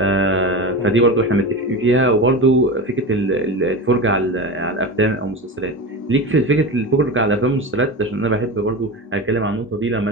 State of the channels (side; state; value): both; normal; correlation 0.24